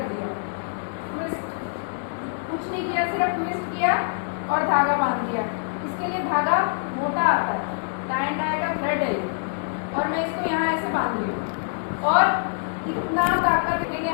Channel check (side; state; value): right; silent; digital silence